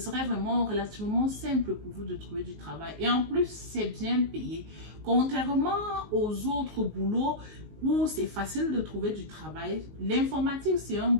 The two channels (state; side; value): late; left; 19 ms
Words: vraiment relativement simple pour vous de trouver du travail. Et en plus, c'est bien payé. Contrairement aux autres boulots où c'est facile de trouver du travail, l'informatique, c'est un